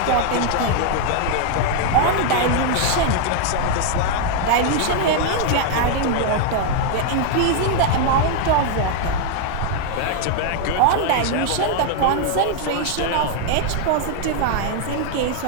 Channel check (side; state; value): both; different; correlation 0.00